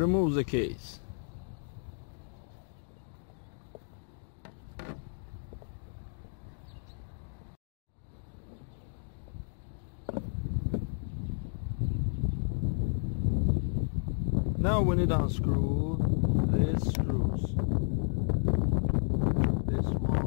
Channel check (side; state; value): right; silent; digital silence